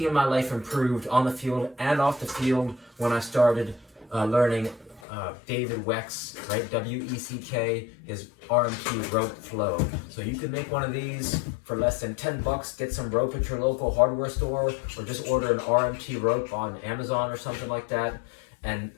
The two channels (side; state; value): right; drops out; at 5.0 s